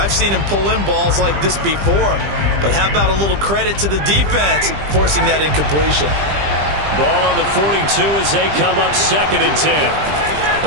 seen him pull in balls like this before. But how about a little credit to the defense forcing that incompletion? Ball on the 42 as they come up 2nd and 10.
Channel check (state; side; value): late; left; 20 ms